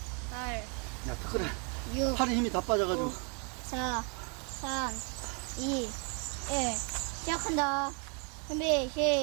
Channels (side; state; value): left; quieter; 36.8 dB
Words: 8, 야, 덕거리. 6, 팔에 힘이 다 빠져가지고. 5, 4, 3, 2, 1. 시작한다. 준비,